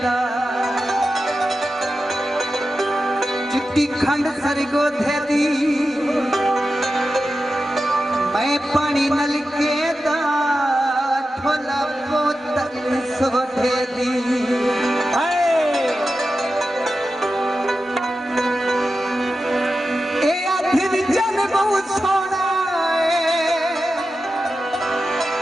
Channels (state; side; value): normal; both; correlation 0.92